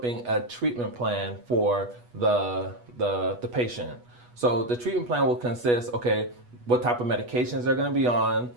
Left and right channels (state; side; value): late; left; 8.2 ms